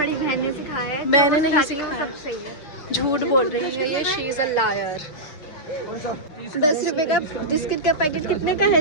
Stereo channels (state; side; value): late; right; 6.8 ms